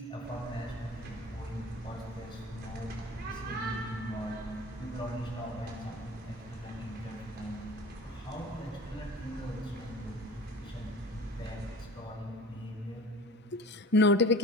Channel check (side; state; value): both; normal; correlation 0.40